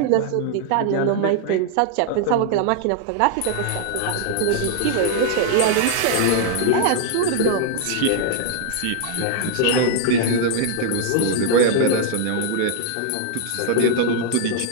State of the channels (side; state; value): both; different; correlation -0.01